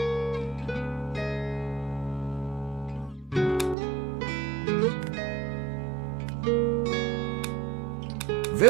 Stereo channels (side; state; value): left; drops out; at 3.8 s